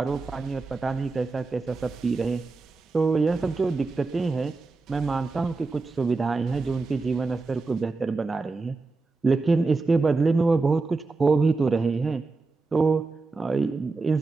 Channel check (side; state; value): left; quieter; 3.8 dB